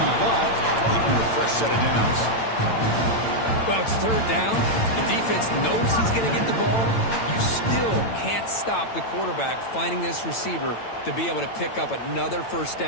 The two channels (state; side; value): late; right; 8.9 ms